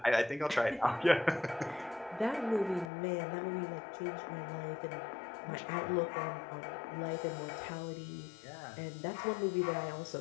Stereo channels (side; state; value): right; drops out; at 2.9 s